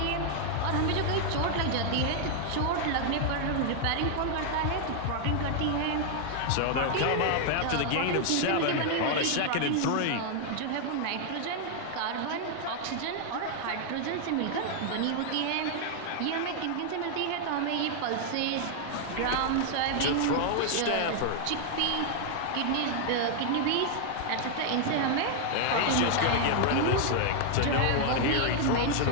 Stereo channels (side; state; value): both; different; correlation 0.00